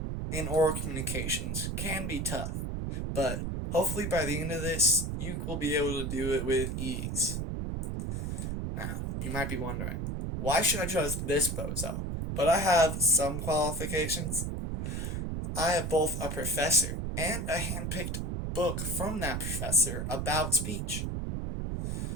in oral communications can be tough, but hopefully by the end of this, you will be able to do it with ease. Now, you might be wondering, why should I choose this bozo? But I have some qualifications. I have both a professor and a hand-picked book from that professor about speech.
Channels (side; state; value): right; noise; rumble, 2 dB below the sound